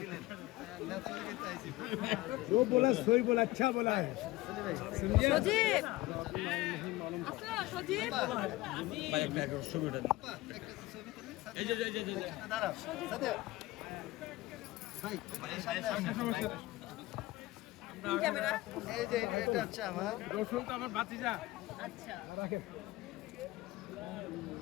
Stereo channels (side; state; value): right; quieter; 19.0 dB